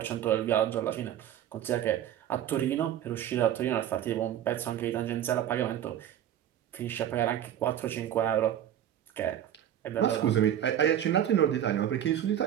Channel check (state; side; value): quieter; left; 10.8 dB